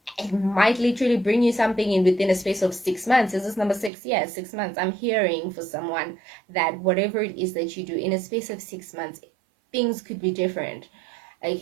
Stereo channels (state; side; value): drops out; left; at 3.9 s